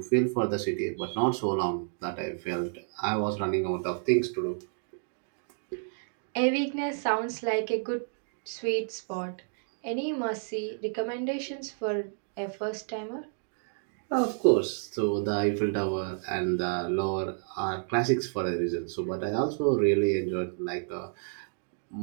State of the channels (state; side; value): silent; left; digital silence